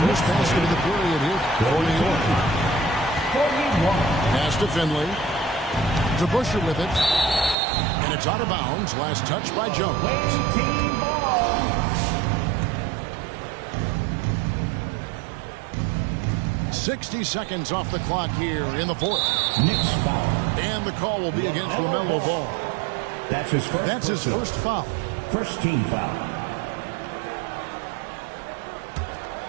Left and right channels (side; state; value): left; drops out; at 7.6 s